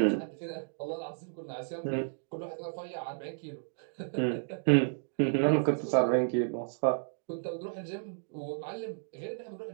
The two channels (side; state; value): left; silent; digital silence